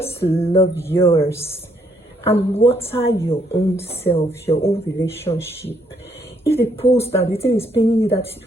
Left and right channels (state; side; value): normal; both; correlation 0.70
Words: love yours. And water your own self, your own relationship. If they post and the thing is paining you that